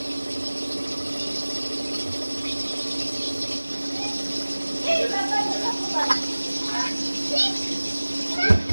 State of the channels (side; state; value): both; inverted; correlation -1.00